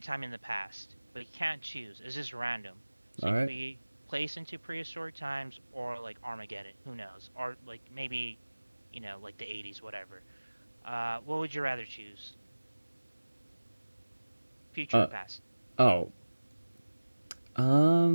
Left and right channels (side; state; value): both; inverted; correlation -1.00